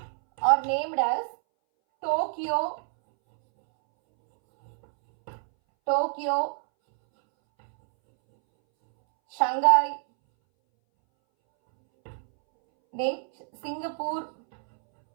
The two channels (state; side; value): silent; left; 61 dB below the other